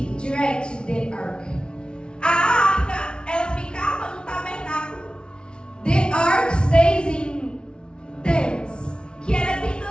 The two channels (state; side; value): late; right; 0.056 ms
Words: direct the ark. A arca, ela ficava no tabernáculo, The ark stays in tents. que era